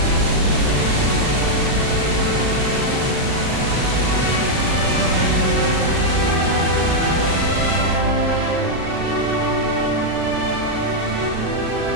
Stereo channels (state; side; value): late; left; 36 ms